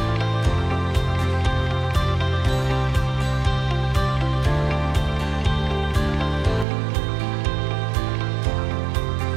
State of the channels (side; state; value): left; drops out; at 6.7 s